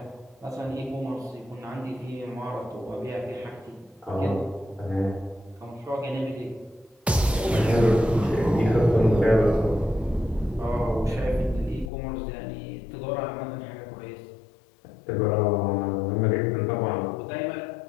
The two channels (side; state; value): right; drops out; at 11.9 s